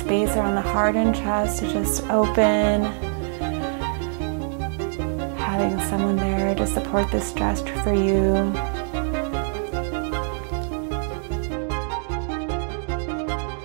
space around the heart and chest to just open. Having someone there to support this stretch for you.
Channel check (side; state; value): left; silent; 63 dB below the other